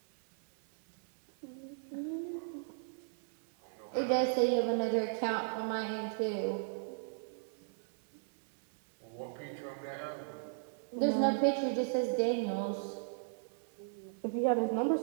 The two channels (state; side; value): silent; left; 54 dB below the other